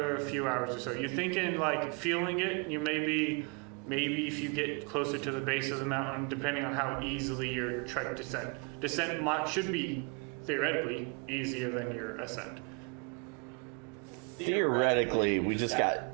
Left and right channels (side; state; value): left; quieter; 33.4 dB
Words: few hours or so. You're thinking like feeling it, you maybe if you get closer to the base of the mountain, depending on how easily your trek descent should be theoretically easier than your ascent. Theoretically, we just got